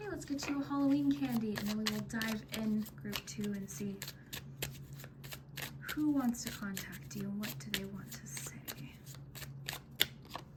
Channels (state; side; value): identical; both; correlation 1.00